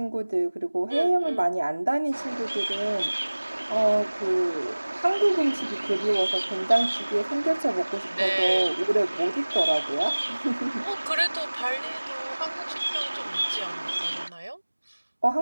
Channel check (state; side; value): inverted; both; correlation -1.00